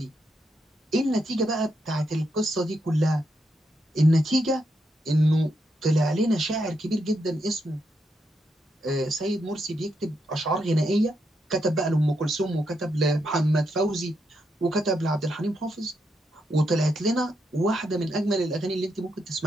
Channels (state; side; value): normal; both; correlation 0.81